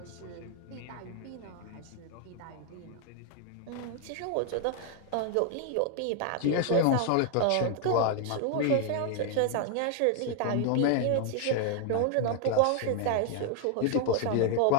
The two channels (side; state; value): both; different; correlation 0.00